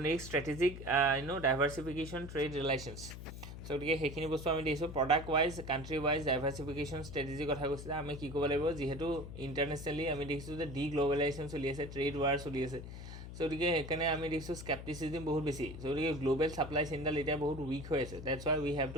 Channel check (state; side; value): noise; left; hum, 11 dB below the sound